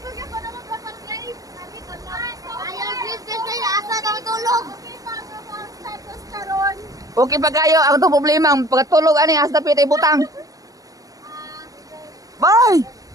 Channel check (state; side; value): late; left; 0.17 ms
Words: Ayaw, please, guys, asa na matulog. Okay pa kayo, ang itong problema, pagkatulog, ani, as na pitay butang. Bye!